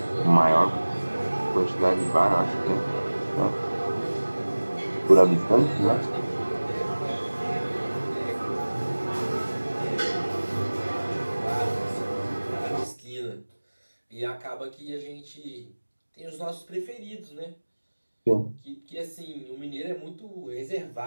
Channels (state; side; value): inverted; both; correlation -1.00